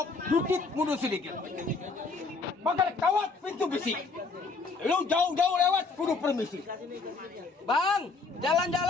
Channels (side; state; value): right; quieter; 4.2 dB